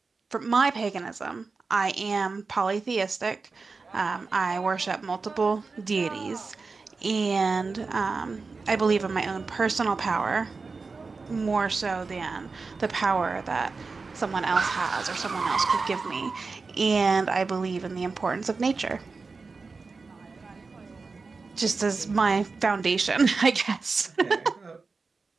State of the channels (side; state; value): left; quieter; 4.3 dB